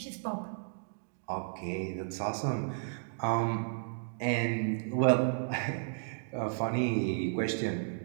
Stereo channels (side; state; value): left; silent; digital silence